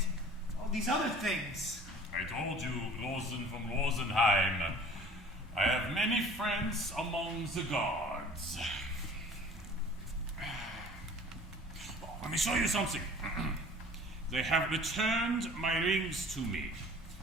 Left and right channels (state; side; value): normal; both; correlation 0.46